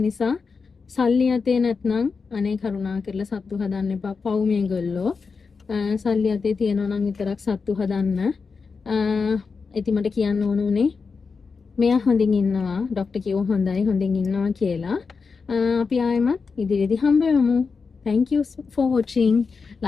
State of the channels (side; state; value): right; quieter; 5.0 dB